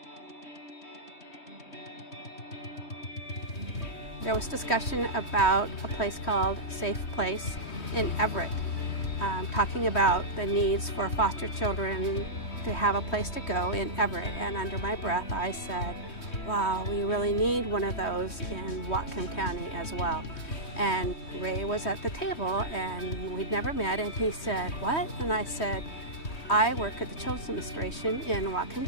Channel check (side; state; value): right; late; 3.2 ms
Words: There was discussion about a place called Safe Place in Everett, talking about the needs for foster children to have a place to go in Everett. And under my breath, I said, wow, we really need one of those in Whatcom County as well. And Ray was at the table, and we'd never met, and he said, what? And I said, I work at the Children's Administration in Whatcom